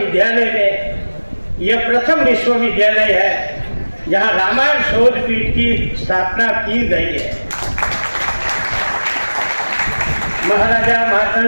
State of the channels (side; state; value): both; inverted; correlation -1.00